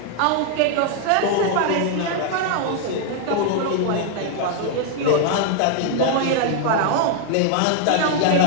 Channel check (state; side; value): different; both; correlation 0.00